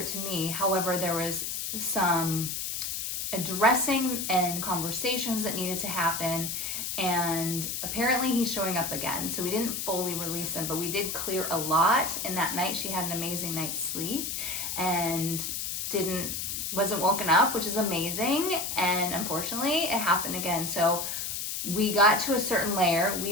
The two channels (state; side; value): noise; left; hiss, 3 dB below the sound